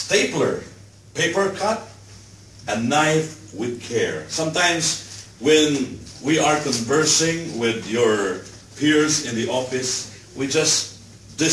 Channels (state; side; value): identical; both; correlation 1.00